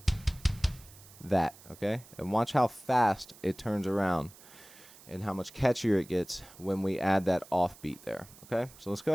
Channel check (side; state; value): right; noise; hiss, 21 dB below the sound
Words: That, okay? And watch how fast it turns around and how much catchier it gets when we add that offbeat there, okay? So let's go